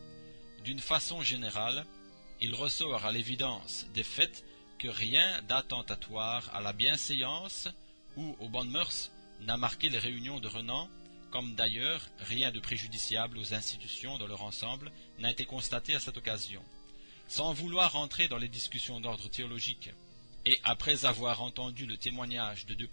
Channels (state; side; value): inverted; both; correlation -1.00